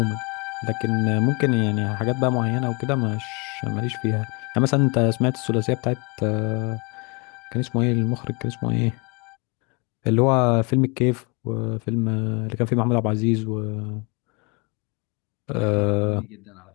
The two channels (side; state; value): right; quieter; 31.1 dB